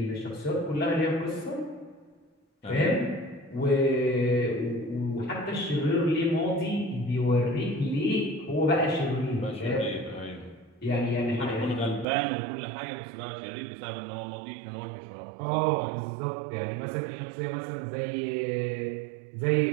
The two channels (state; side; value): drops out; left; at 12.1 s